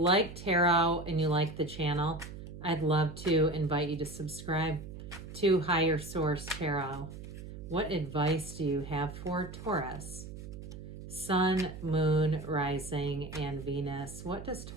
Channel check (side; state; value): right; noise; hum, 12 dB below the sound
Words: tarot and you like the channel, I'd love to invite you to subscribe to Higher Source Tarot. What advice do you have for Taurus? Sun, Moon, Rising, and Venus. What does